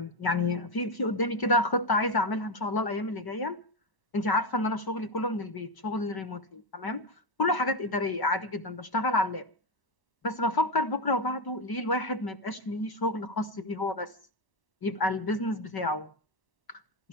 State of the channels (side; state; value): right; late; 1.0 ms